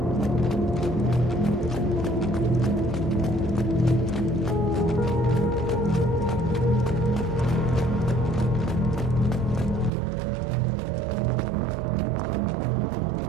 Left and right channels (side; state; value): left; drops out; at 9.9 s